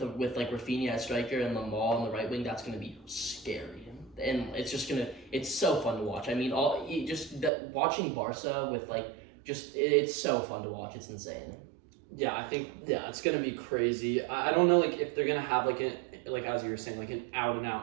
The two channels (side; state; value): left; drops out; at 7.5 s